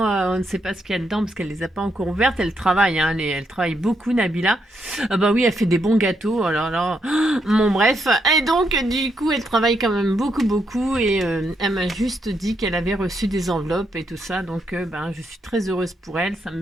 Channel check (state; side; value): normal; both; correlation 0.78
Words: on ne sait pas ce qu'il y a dedans parce qu'elle les a pas encore ouvertes. Elle travaille, hein, elle travaille beaucoup Nabila. Oui, elle fait des bons gâteaux. Alors là, bon bref. Et donc du coup, elle travaille quand même beaucoup et elle m'a juste dit qu'elle avait reçu des enveloppes et tout ça. Donc je suis très heureuse pour elle. Ça